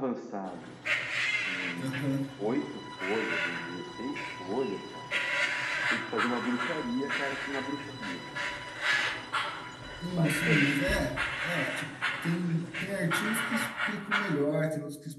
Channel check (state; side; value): identical; both; correlation 1.00